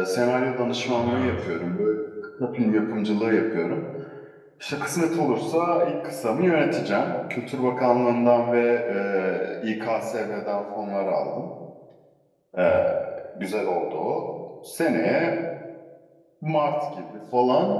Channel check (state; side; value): identical; both; correlation 1.00